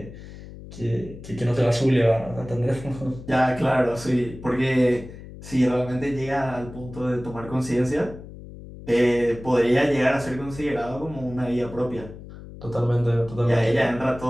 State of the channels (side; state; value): left; noise; hum, 15 dB below the sound